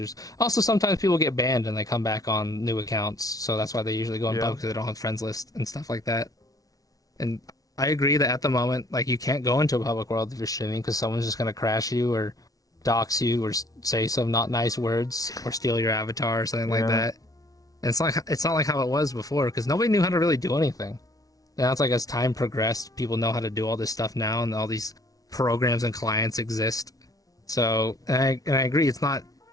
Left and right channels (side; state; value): right; late; 0.18 ms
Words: Also, sometimes people get banned and they come back on new accounts, so that's why they usually go in Yeah. public because they don't have friends list and stuff like that. And I agree that at the moment, like you can't go into a public world if you're streaming because someone's just gonna crash you or dox you or say some not nice words or steal your avatar or something like Yeah. that. And it's not like how it was before because nobody knew how to really do anything. Now it's like as time progressed, people know how to do all this stuff now, and all these programs and clients exist. So, and I agree, it's not